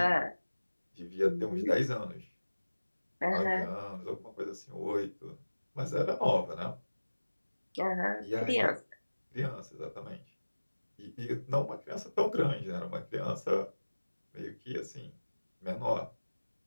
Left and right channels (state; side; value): inverted; both; correlation -1.00